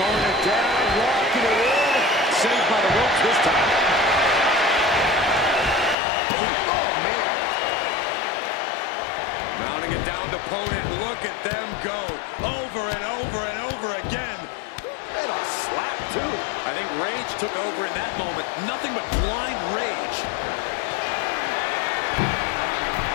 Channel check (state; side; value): drops out; right; at 6.0 s